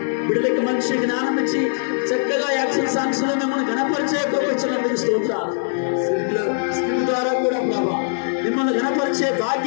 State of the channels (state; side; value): silent; right; digital silence